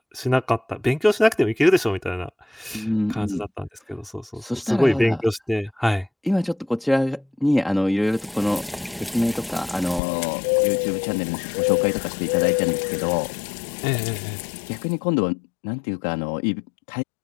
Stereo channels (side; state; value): right; drops out; at 10.0 s